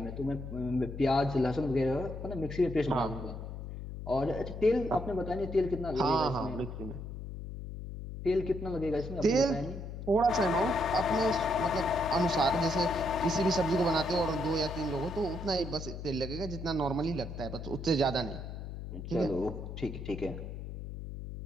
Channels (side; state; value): left; noise; hum, 8 dB below the sound